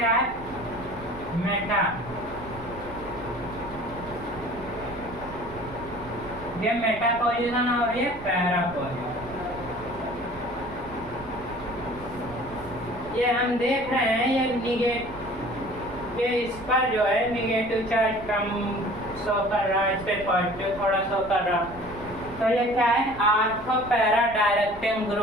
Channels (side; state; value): right; noise; rumble, 16 dB below the sound